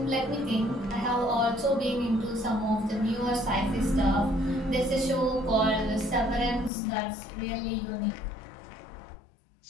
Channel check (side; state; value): right; drops out; at 6.7 s